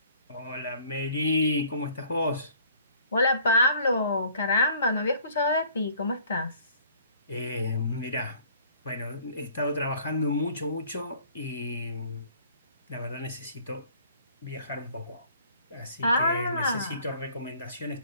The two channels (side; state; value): both; inverted; correlation -0.56